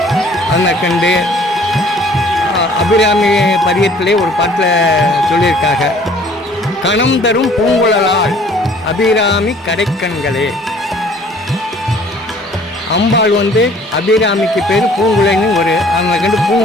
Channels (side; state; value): both; normal; correlation 0.55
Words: அந்த கண்டு அபிராமி பதியத்திலே ஒரு பாட்டில் சொல்லியிருக்காங்க, கணம் தரும் பூங்குழலால் அபிராமி கடைக்கண்களே. அம்பாள் வந்து அபிராமிக்கு பேர் பூங்குழலின்னு ஒரு அந்த கண்டு